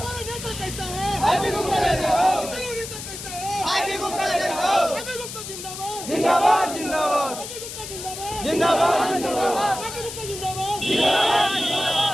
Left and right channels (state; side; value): noise; left; hiss, 9 dB below the sound